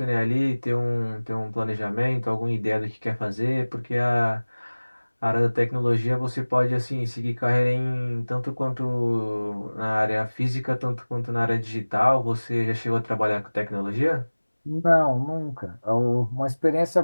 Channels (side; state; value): both; inverted; correlation -1.00